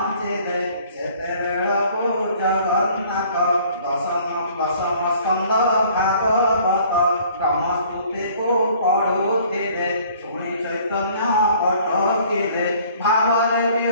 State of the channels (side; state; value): both; inverted; correlation -0.55